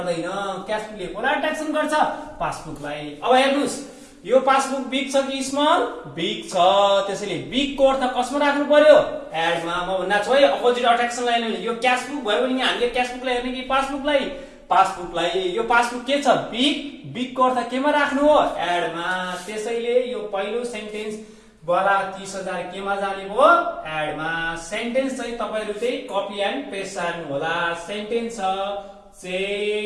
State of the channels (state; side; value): identical; both; correlation 1.00